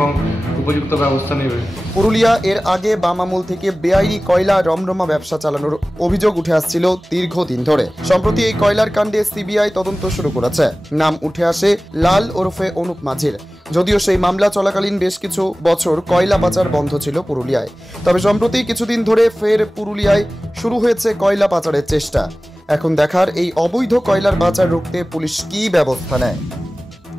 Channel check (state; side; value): normal; both; correlation 0.97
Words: উপযুক্ত ব্যবস্থা নেবে। পুরুলিয়া এর আগে বাম আমল থেকে বেআইনি কয়লা রমরমা ব্যবসা চালানোর অভিযোগ উঠে আসছিল দীর্ঘদিন ধরে। সম্প্রতি এই কয়লার কাণ্ডে সিবিআই তদন্ত শুরু করেছে। নাম উঠে আসে লাল ওরফে অনুপ মাঝির। যদিও সেই মামলা চলাকালীন বেশ কিছু বছর কয়লা পাচার বন্ধ ছিল পুরুলিয়ায়, তবে সম্প্রতি কিছুদিন ধরে ফের পুরুলিয়ায় শুরু হয়েছে কয়লা পাচারের চেষ্টা। এখন দেখার এই অবৈধ কয়লার পাচার রুখতে পুলিশ কী ব্যবস্থা নেয়।